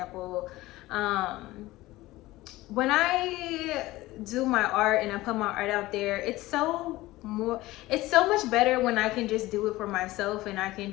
When I do my art and I put my art out there, it's so much better when I can just do it for myself, and I can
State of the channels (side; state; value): right; quieter; 18.2 dB